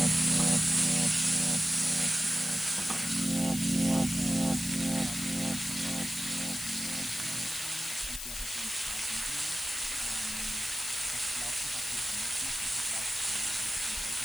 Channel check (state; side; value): noise; left; hiss, 7 dB below the sound